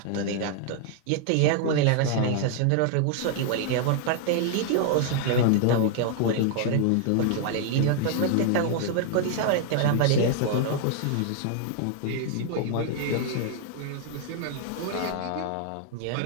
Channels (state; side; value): different; both; correlation 0.00